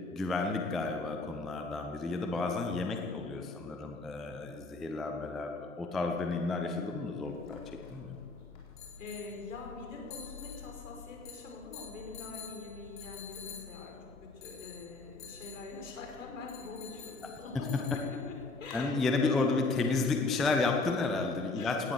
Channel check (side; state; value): right; quieter; 3.4 dB